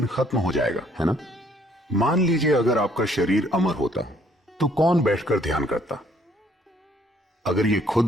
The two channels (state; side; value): normal; both; correlation 0.64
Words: खत्म हो जाएगा, है ना? मान लीजिए अगर आपका शरीर अमर होता तो कौन बैठकर ध्यान करता? अगर ये